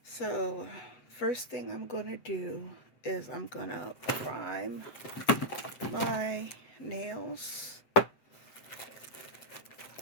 So first thing I'm going to do is I'm going to prime my nails.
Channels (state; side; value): late; right; 8.1 ms